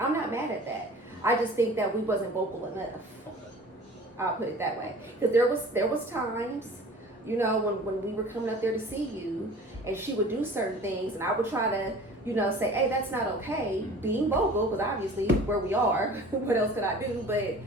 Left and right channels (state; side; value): normal; both; correlation 0.44